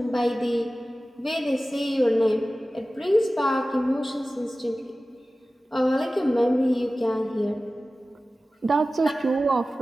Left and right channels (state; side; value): normal; both; correlation 0.96